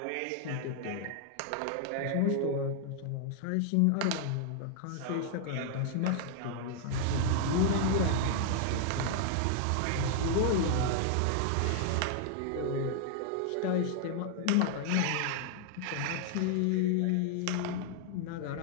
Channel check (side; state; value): both; different; correlation 0.00